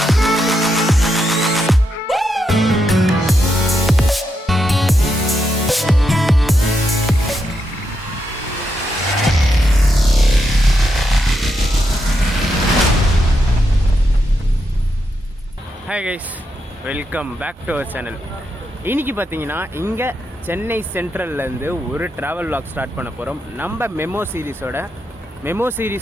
Hi guys, welcome back to our channel. இன்றைக்கி பார்த்தீங்கன்னா இங்கே சென்னை சென்ட்ரல்லேருந்து ஒரு ட்ராவல் vlog ஸ்டார்ட் பண்ண போகிறோம். நம்ம மெமோ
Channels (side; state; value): both; normal; correlation 0.83